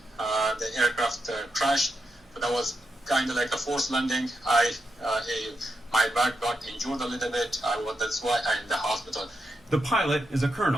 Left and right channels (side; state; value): both; normal; correlation 0.85